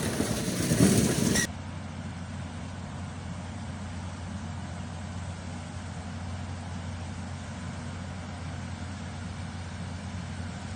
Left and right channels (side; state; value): both; identical; correlation 1.00